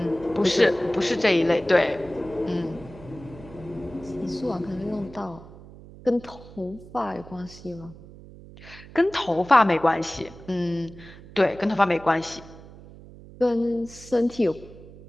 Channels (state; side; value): noise; right; hum, 18 dB below the sound